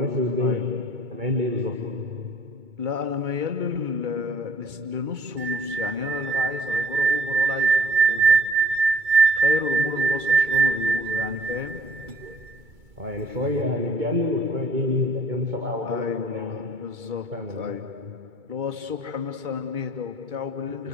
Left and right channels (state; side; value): late; left; 2.2 ms